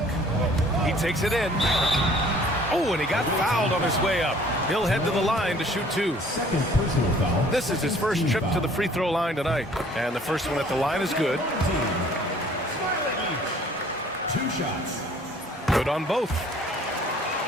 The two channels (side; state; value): both; normal; correlation 0.55